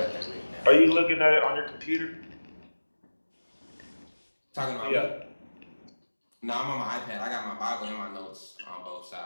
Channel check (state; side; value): inverted; both; correlation -1.00